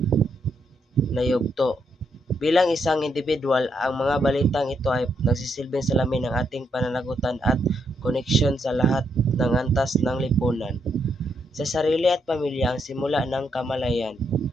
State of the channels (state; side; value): normal; both; correlation 0.78